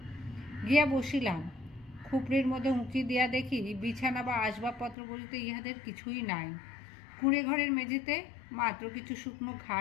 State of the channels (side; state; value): right; drops out; at 5.0 s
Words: গিয়া বসিলাম। খুপড়ির মধ্যে উঁকি দিয়া দেখি বিছানা বা আসবাবপত্র বলিতে ইহাদের কিছুই নাই। কুঁড়ে ঘরের মেঝেতে মাত্র কিছু শুকনো